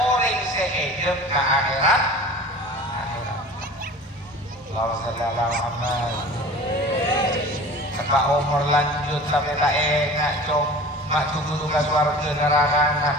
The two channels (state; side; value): normal; both; correlation 0.40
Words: sehidup ke akhirat. Allahumma shalli ala Muhammad. Kata umur lanjut sampai tak enak cong mak tunggu tugas warga neraka